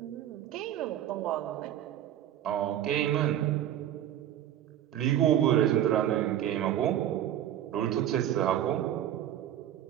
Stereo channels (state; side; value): quieter; left; 11.5 dB